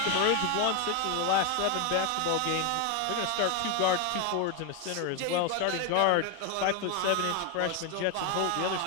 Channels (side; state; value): both; different; correlation 0.01